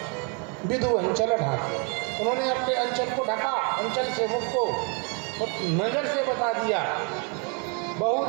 विदु अंचल ढाकी, उन्होंने अपने अंचल को ढका, अंचल से मुख को नजर से बता दिया।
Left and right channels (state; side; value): quieter; left; 35.8 dB